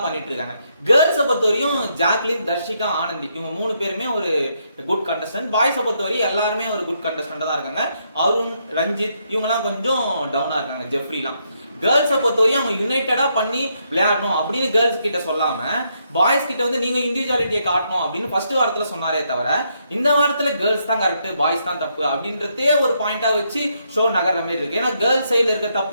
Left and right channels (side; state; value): both; inverted; correlation -0.77